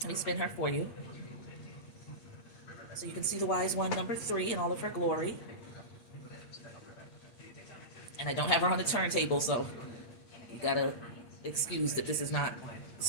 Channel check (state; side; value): late; right; 8.4 ms